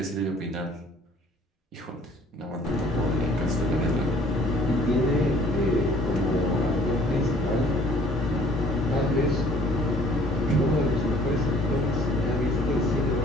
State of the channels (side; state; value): both; normal; correlation 0.56